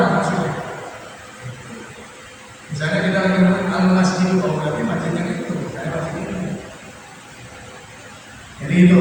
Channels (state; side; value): identical; both; correlation 1.00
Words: maksudnya. Misalnya kita lagi ngomong al-masjid, oh berarti masjidnya itu, saya masjid itu. Jadi itu